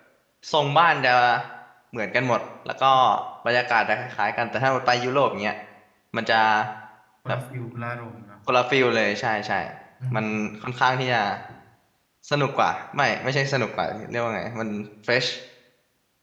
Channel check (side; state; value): both; identical; correlation 1.00